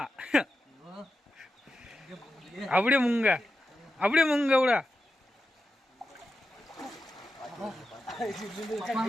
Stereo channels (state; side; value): normal; both; correlation 0.88